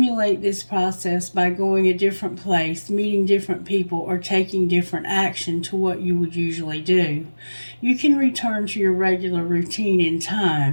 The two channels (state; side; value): inverted; both; correlation -1.00